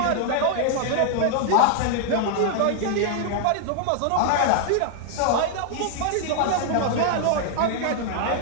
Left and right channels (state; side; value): different; both; correlation -0.01